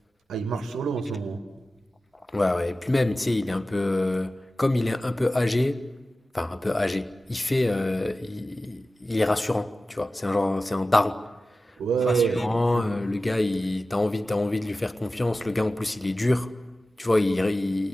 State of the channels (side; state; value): both; normal; correlation 0.95